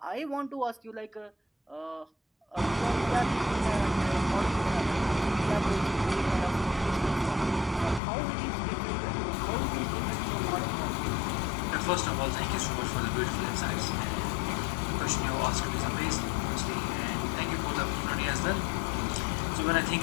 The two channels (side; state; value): right; drops out; at 8.0 s